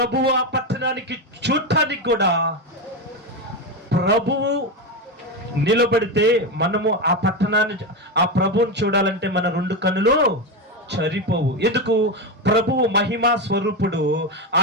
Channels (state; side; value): normal; both; correlation 0.14